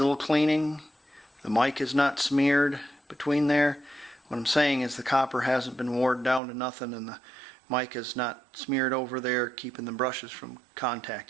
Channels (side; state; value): left; drops out; at 6.4 s